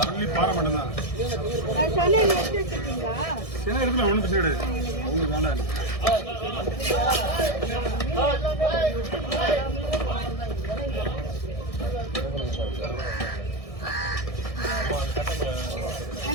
ஒன்லி பாறை மட்டும் தான். சின்ன இடத்துல ஒன்றும் பிரச்சனை கிடையாது. அவங்களுக்கு வேண்டாம்.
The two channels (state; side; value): late; right; 1.6 ms